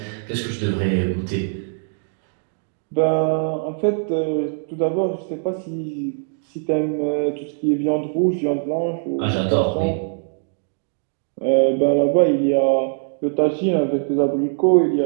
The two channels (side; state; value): left; silent; digital silence